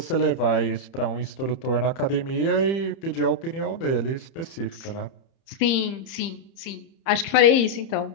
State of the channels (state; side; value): late; right; 30 ms